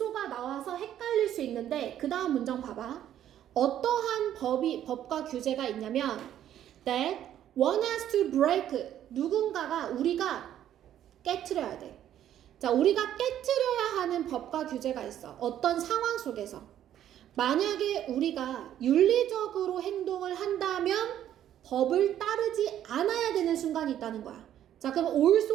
나와서 헷갈릴 수 있는데 그 다음 문장 봐봐. 어떠한 법과 규제가 있냐면 that one has to break, 누군가가 우리가 깨트려야 돼. 자, 우리가 깨트려야 하는 법과 규제가 있어. 어떤 상황 속에서 만약에 우리가 윤리적으로 행동을 한다면 법을 따르지 않아야 되는 순간이 있다는 거야. 자, 그럼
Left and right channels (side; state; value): left; quieter; 11.1 dB